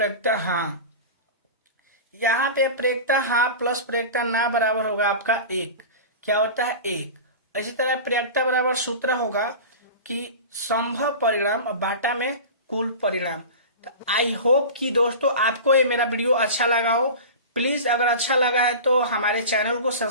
हाँ। यहाँ पे प्रयोक्ता हाँ प्लस प्रयोक्ता ना बराबर होगा आपका 1। क्या होता है, 1। इसी तरह प्रयोक्ता बराबर सूत्र होगा कि संभव परिणाम बाटा में कुल परिणाम। तो आई होप कि दोस्तों आपको ये मेरा वीडियो अच्छा लगा हो। प्लीज अगर अच्छा लगा है तो हमारे चैनल को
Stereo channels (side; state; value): both; inverted; correlation -0.32